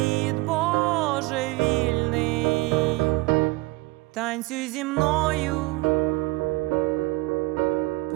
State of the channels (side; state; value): left; quieter; 21.9 dB